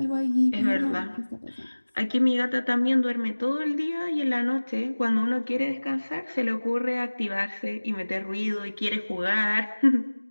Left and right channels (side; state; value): both; inverted; correlation -1.00